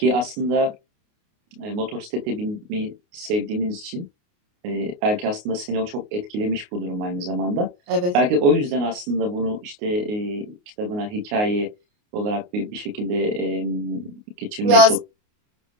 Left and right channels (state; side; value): late; left; 29 ms